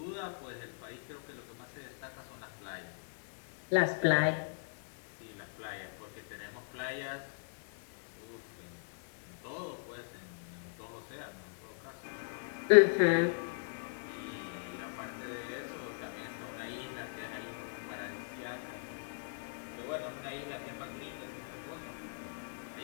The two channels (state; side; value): silent; right; digital silence